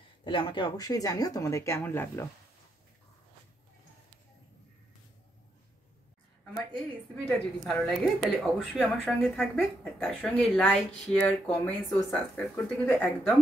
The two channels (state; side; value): normal; both; correlation 0.79